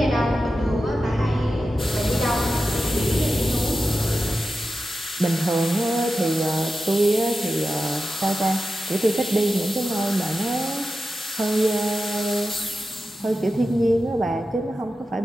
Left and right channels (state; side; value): normal; both; correlation 0.91